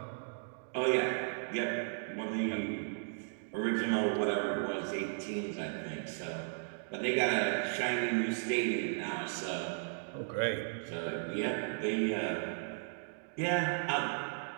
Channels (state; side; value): silent; left; digital silence